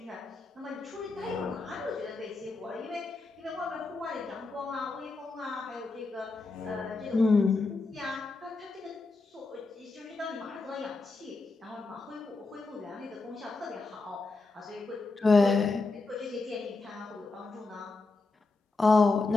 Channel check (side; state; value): right; quieter; 3.7 dB